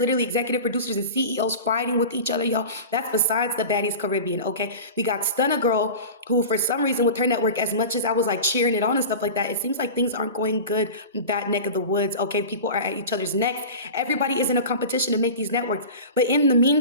executive producers and CEOs fighting with each other, y'all. That's besides the Baddies Carribean, okay? We got Stunna Girl, who for some reason with her network, as much as I was like cheering it on and stuff like that, it seems like things aren't going good in that neck of the woods, okay? People are at each other's necks. Everybody is in a competition to make these networks. But in the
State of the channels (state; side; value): inverted; both; correlation -0.32